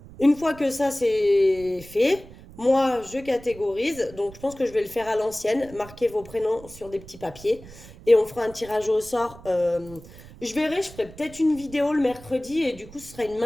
Une fois que ça c'est fait, moi je catégorise. Donc je pense que je vais le faire à l'ancienne. Marquez vos prénoms sur des petits papiers. Et on fera un tirage au sort. Je ferai peut-être une vidéo le mercredi. Et du coup ce sera une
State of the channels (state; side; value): noise; right; rumble, 19 dB below the sound